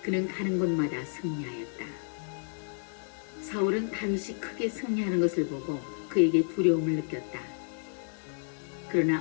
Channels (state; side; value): silent; right; digital silence